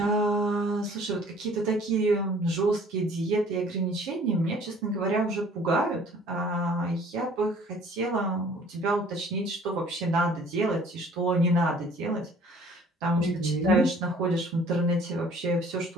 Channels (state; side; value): normal; both; correlation 0.53